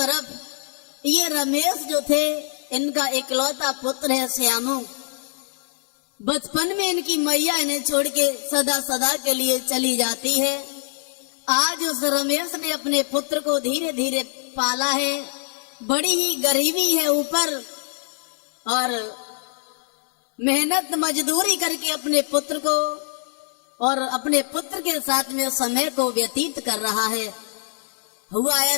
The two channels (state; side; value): silent; right; digital silence